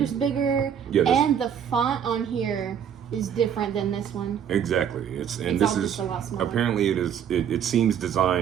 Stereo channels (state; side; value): quieter; left; 8.6 dB